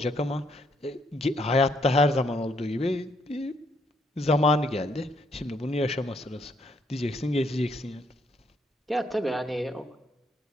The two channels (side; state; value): both; normal; correlation 0.72